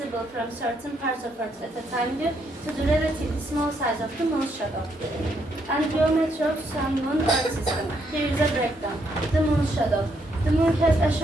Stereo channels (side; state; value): both; normal; correlation 0.75